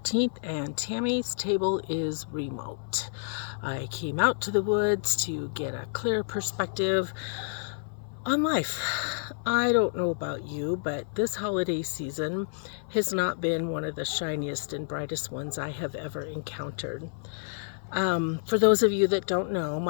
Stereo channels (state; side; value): silent; right; 58 dB below the other